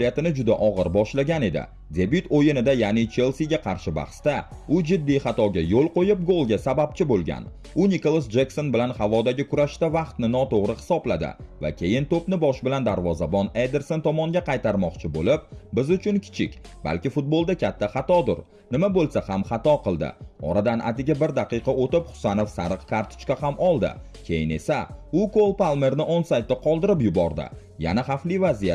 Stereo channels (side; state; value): both; identical; correlation 1.00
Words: juda og'ir boshlagan edi. Debyut o'yinida, ya'ni Chelsea'ga qarshi bahsda, u jiddiy xatoga yo'l qo'yib golga sababchi bo'lgan. U Nicholas Jackson bilan havodagi kurashda vaqtni noto'g'ri hisobladi va keyin to'pni bosh bilan darvozabon Ederson tomonga qaytarmoqchi bo'lib, biz uchun kichik, balki futbolda katta xatodir. Nima bo'lsa ham xato qildi. Oradan atigi 1 daqiqa o'tib Husanov sariq kartochka ham oldi. Keyin esa u Cole Palmerni onsaytda qoldirib yubordi. Yana xavfli